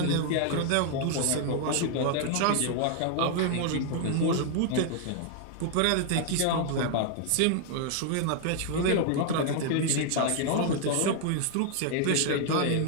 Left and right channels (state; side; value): different; both; correlation 0.00